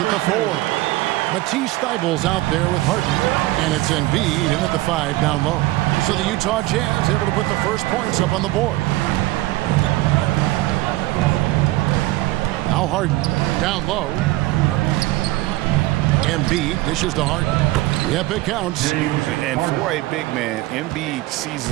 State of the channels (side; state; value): left; quieter; 18.6 dB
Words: the 4. Matisse Thybulle's out there with Harden, and it's Embiid in at the 5 down low. So the Utah Jazz able to put the first points up on the board. Now Harden down low. Embiid dishes to Harden. Yep, it counts. And for a big man, Embiid sees